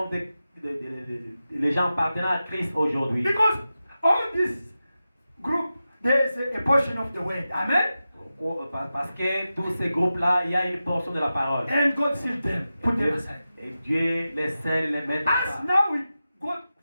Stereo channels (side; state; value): both; inverted; correlation -0.93